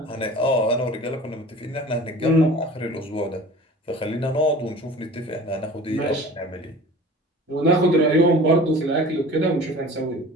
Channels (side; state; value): both; normal; correlation 0.42